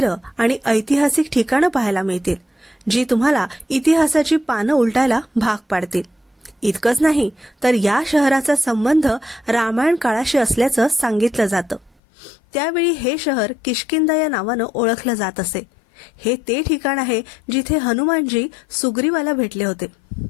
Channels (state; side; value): drops out; right; at 11.9 s